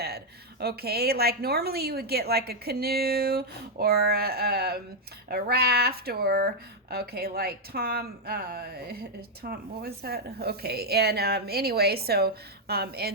Okay, like normally you would get like a canoe or a raft or okay, like Tom, what was that? Okay, and anyway, so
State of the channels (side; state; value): both; normal; correlation 0.00